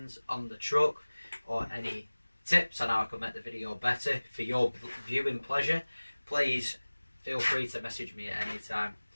on the truck or any tips on how I can make the video better for your viewing pleasure, please feel free to message me at any time.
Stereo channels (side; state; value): both; inverted; correlation -1.00